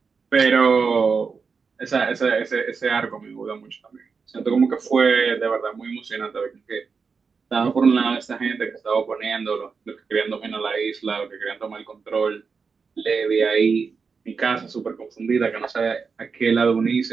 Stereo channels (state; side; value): quieter; left; 5.3 dB